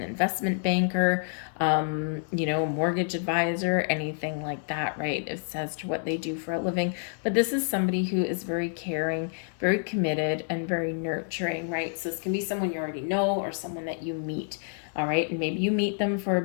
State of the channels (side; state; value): right; silent; digital silence